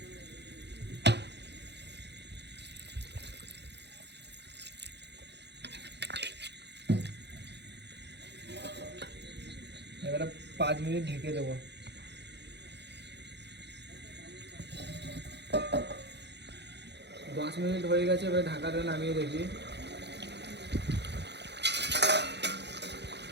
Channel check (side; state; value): left; late; 0.50 ms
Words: এবারে 5 মিনিট ঢেকে দেবো। 10 মিনিট হয়ে গেছে, এবারে ঢাকাটা নামিয়ে দেখি।